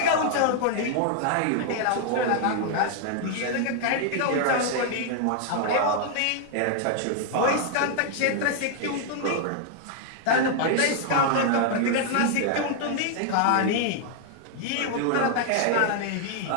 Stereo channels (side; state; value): both; different; correlation 0.00